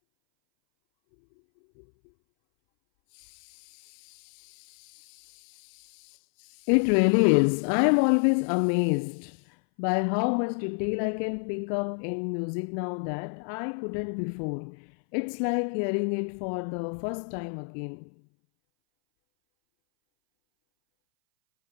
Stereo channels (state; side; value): silent; right; 59 dB below the other